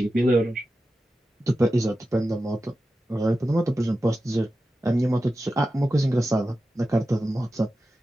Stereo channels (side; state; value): both; normal; correlation 0.93